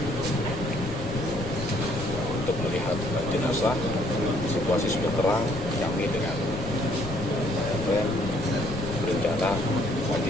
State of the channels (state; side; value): noise; left; rumble, 10 dB below the sound